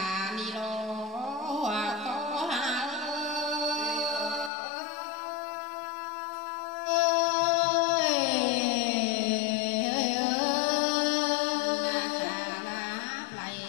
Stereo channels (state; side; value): drops out; right; at 4.5 s